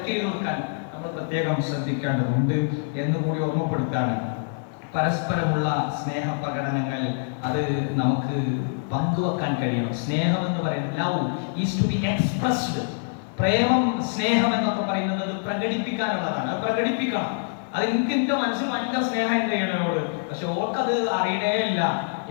ചെയ്ത് കൊടുക്കാൻ നമ്മൾ പ്രത്യേകം ശ്രദ്ധിക്കേണ്ടതുണ്ട് എന്ന് കൂടി ഓർമ്മപ്പെടുത്താണ്. പരസ്പരമുള്ള സ്നേഹപ്രകടനങ്ങൾ അത് നമുക്ക് പങ്കുവെക്കാൻ കഴിയണം. സ്നേഹം എന്ന് പറയുന്നത് love is to be expressed. പ്രേമം, സ്നേഹം എന്നൊക്കെ പറയുന്നത് അത് പ്രകടിപ്പിക്കാനുള്ളതാണ്. അത് പ്രകടിപ്പിക്കണം. അത് എനിക്ക് എൻ്റെ മനസ്സിൽ ഭയങ്കര സ്നേഹം എൻ്റെ ഇടയോട്, പക്ഷെ ഓൾക്കത് അറിയണേ ഇല്ല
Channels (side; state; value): right; silent; 62 dB below the other